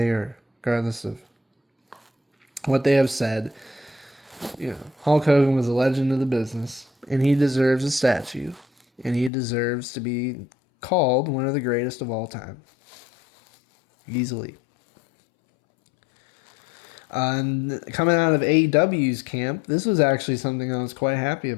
or regardless of what they have said, Hulk Hogan was a legend of the business, and he deserves a statue, and he deserves to be called one of the greatest of all time. Easily. And coming out of AEW's camp, this was actually something I was quite happy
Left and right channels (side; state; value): right; drops out; at 9.3 s